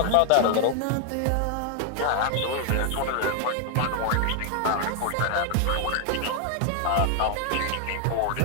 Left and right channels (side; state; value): both; different; correlation 0.00